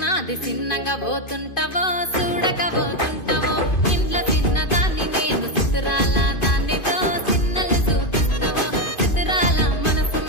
నాది చిన్నగా పోతుంటావో చూడక పోతుంటావో ఇంట్లో చిన్నదాన్ని నేను చిత్రాల దాన్నితో చిన్నలు చూపిస్తావో చిత్రాల మనసు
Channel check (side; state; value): right; late; 2.5 ms